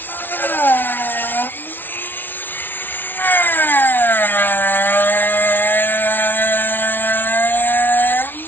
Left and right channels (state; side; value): late; right; 0.095 ms